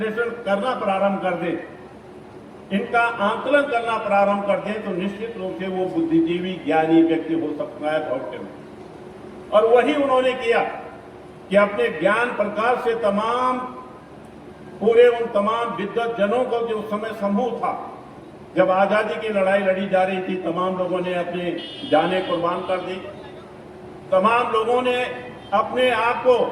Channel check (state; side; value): identical; both; correlation 1.00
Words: करना प्रारंभ कर दे, इनका आंकलन करना प्रारंभ कर दे, तो निश्चित रूप से वो बुद्धिजीवी ज्ञानी व्यक्ति हो सकता है भविष्य में। और वही उन्होंने किया कि अपने ज्ञान प्रकाश से तमाम पूरे उन तमाम विद्वत जनों को जो उस समय समूह था, जब आजादी की लड़ाई लड़ी जा रही थी, तमाम लोगों ने अपने जानें कुर्बान कर दी, तमाम लोगों ने अपने आप को